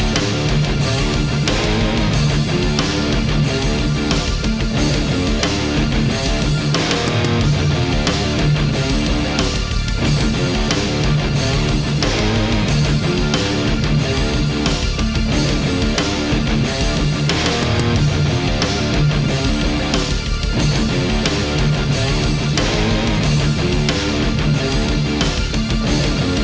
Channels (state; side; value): identical; both; correlation 1.00